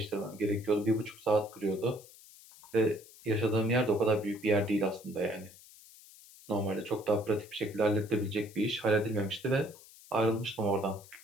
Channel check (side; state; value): left; noise; hiss, 21 dB below the sound